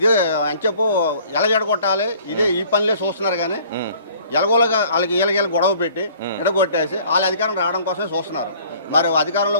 అని చెప్పు ఎలా ఎడగొట్టాలి ఇదే ఈ పనిలే చూస్తున్నారు. కానీ ఎలగోలుగా వాళ్ళకి వీళ్ళకి గొడవ పెట్టి ఎడగొట్టేసి వాళ్ళ అధికారం రావడం కోసమే చూస్తున్నారు. మరి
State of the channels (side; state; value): both; inverted; correlation -0.54